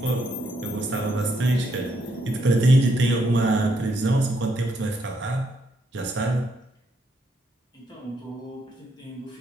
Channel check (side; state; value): both; normal; correlation 0.76